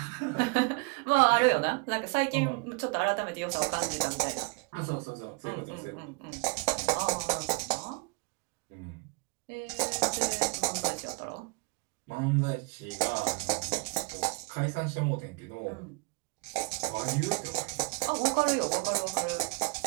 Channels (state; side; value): quieter; left; 30.5 dB